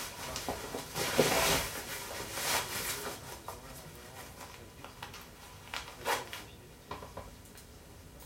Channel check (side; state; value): both; identical; correlation 1.00